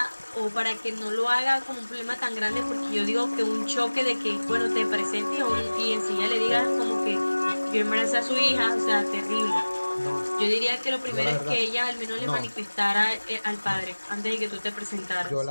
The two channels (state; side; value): inverted; both; correlation -1.00